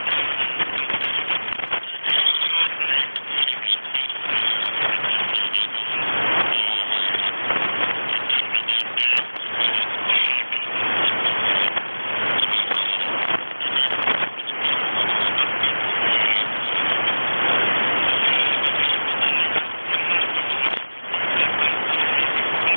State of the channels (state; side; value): inverted; both; correlation -1.00